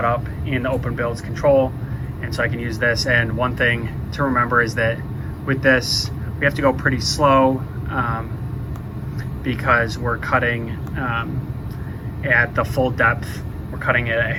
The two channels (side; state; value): both; identical; correlation 1.00